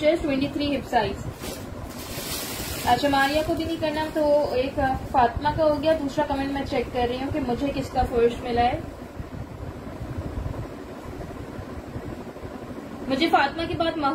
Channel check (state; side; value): identical; both; correlation 1.00